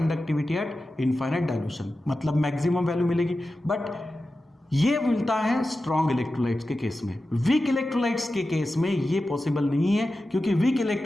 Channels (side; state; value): both; normal; correlation 0.93